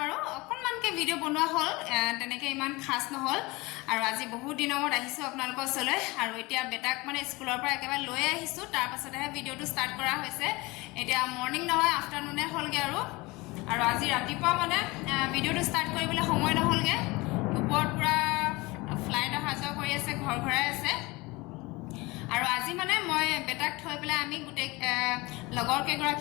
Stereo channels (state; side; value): quieter; right; 23.1 dB